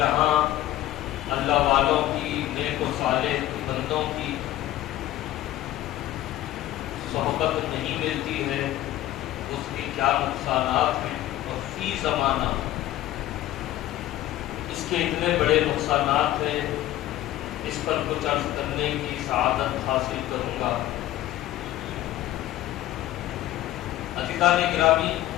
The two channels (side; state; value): right; quieter; 14.4 dB